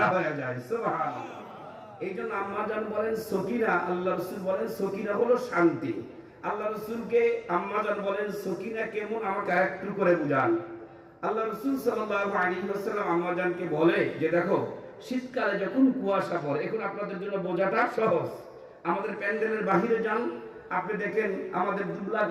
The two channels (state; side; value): identical; both; correlation 1.00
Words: হয়ে যায়। সুবহানাল্লাহ। এই জন্য আম্মা জান বলেন সকিনা, আল্লাহ রাসূল বলেন সকিনা হলো শান্তি। আল্লাহ রাসূলকে আম্মা জান বলেন সকিনা কেমন, আমাকে আরেকটু করে বুঝান। আল্লাহ রাসূল সাল্লাল্লাহু আলাইহি ওয়াসাল্লাম আম্মা জানকে বলে যে দেখো, শীতকালে যখন কুয়াশা পড়ে, এখন আপনাদের জন্য বোঝাটা সহজ। আমাদের প্যান্ডেলের বাহিরে যান, আপনি দেখেন আমাদের দুবলা